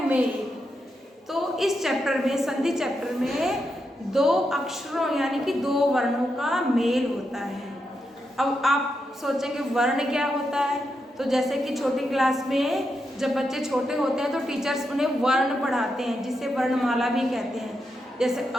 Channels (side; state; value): both; normal; correlation 0.84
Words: मेल। तो इस चैप्टर में संधि चैप्टर में दो अक्षरों यानी कि दो वर्णों का मेल होता है। अब आप सोचेंगे वर्ण क्या होता है, तो जैसे कि छोटी क्लास में जब बच्चे छोटे होते हैं तो टीचर्स उन्हें वर्ण पढ़ाते हैं जिसे वर्णमाला भी कहते हैं। जैसे अ